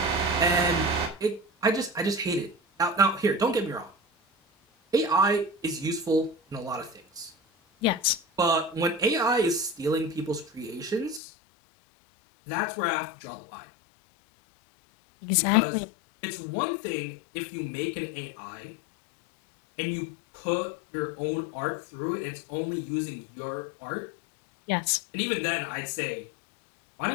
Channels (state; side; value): drops out; right; at 11.2 s